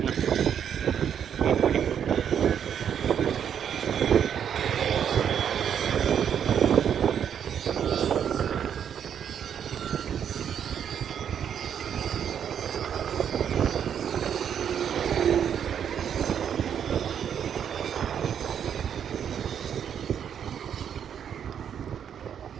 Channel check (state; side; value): quieter; left; 8.5 dB